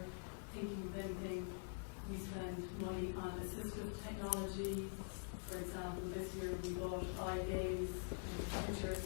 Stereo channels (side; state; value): right; silent; digital silence